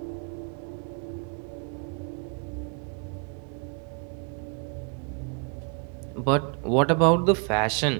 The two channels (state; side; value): quieter; left; 35.9 dB